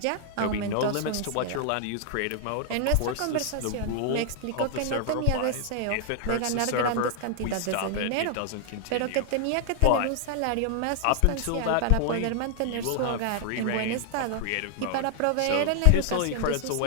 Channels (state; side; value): different; both; correlation 0.00